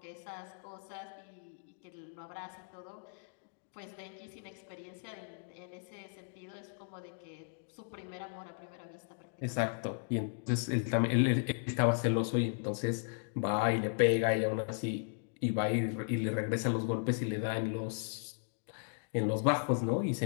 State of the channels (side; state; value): right; silent; digital silence